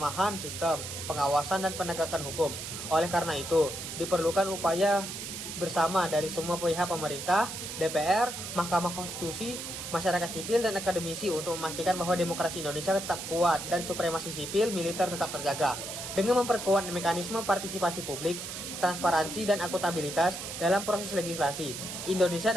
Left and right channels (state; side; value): noise; right; hiss, 7 dB below the sound